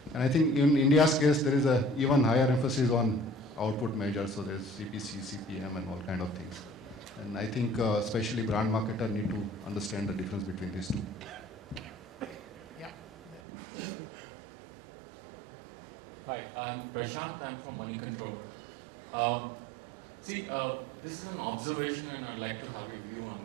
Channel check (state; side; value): drops out; left; at 13.4 s